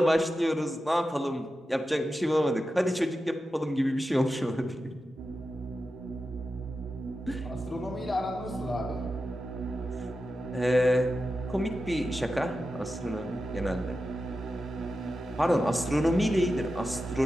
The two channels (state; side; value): normal; both; correlation 0.91